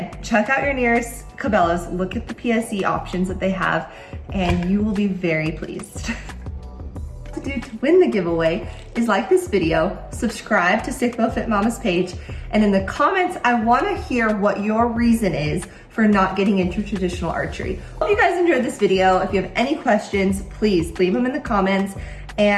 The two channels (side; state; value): both; identical; correlation 1.00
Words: check out your nearest Cabelas, look at the PSE options that they have, and you will be very pleased. To do to win the giveaway is like this video, subscribe to Stickbow Fit Mama's page, and in the comments, I wanna hear what your reason is for not getting into traditional archery. Hope you guys enjoyed this video. If you have any questions, please leave them in the comments,